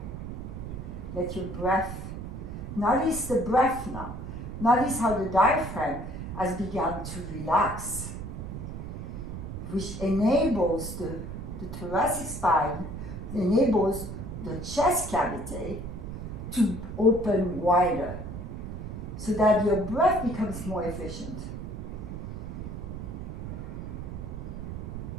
Let your breath, notice the breath now. Notice how the diaphragm has begun to relax, which enables the thoracic spine, enables the chest cavity to open wider, so that your breath becomes more efficient.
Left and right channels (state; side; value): noise; right; rumble, 7 dB below the sound